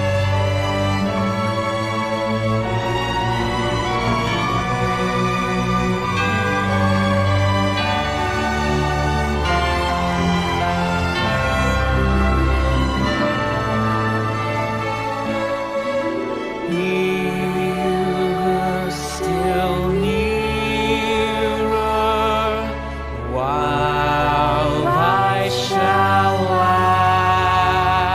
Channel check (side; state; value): both; identical; correlation 1.00